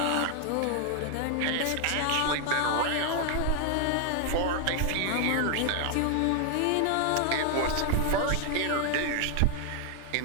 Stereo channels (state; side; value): different; both; correlation 0.00